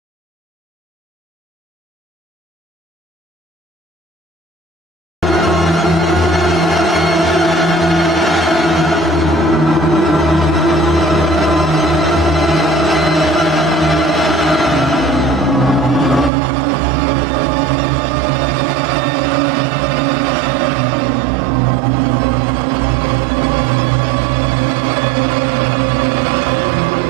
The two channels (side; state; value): left; drops out; at 16.3 s